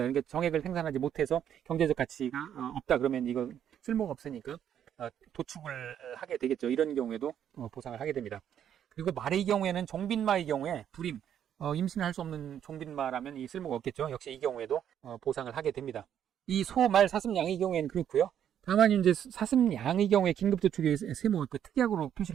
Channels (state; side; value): quieter; left; 9.6 dB